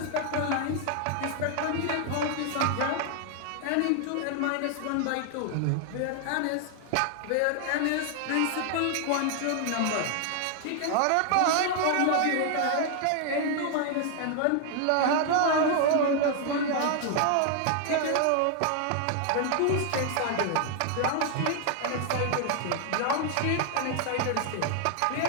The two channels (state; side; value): different; both; correlation 0.00